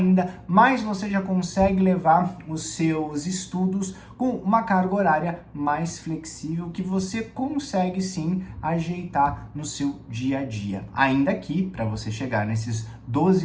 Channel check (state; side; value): identical; both; correlation 1.00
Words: mas você já consegue levar os seus estudos com uma carga horária mais flexível, que você consegue sim ajeitar no no seu dia a dia. Ainda que, para você chegar nesses